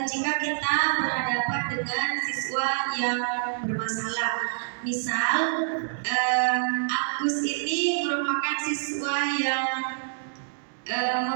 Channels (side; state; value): left; silent; digital silence